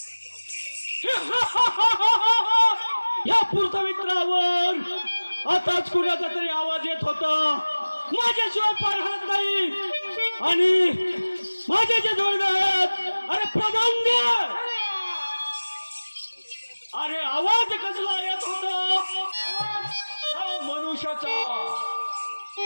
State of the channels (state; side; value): inverted; both; correlation -1.00